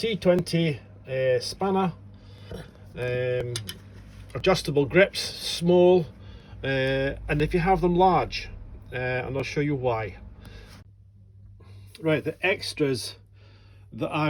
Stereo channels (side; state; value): both; identical; correlation 1.00